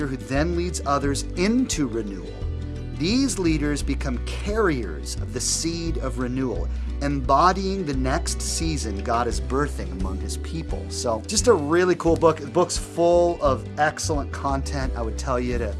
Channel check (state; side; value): identical; both; correlation 1.00